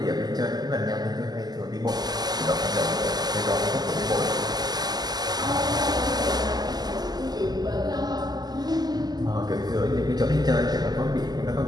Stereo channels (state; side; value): late; left; 0.20 ms